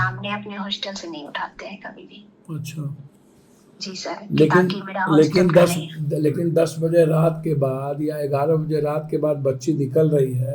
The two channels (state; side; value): identical; both; correlation 1.00